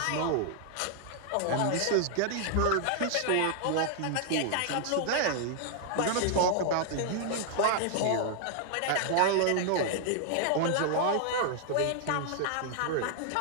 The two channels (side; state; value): both; different; correlation 0.00